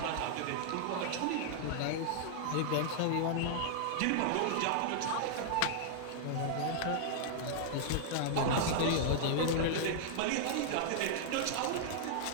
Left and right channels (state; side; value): different; both; correlation -0.01